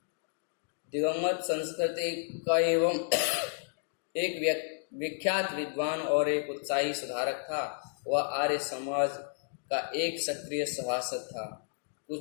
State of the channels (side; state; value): right; silent; digital silence